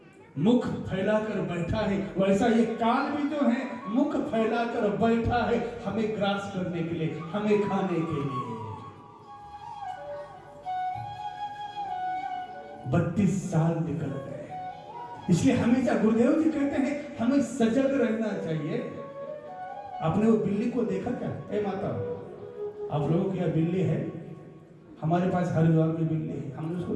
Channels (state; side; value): identical; both; correlation 1.00